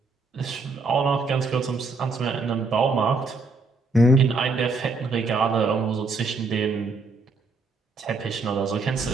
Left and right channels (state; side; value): quieter; left; 3.7 dB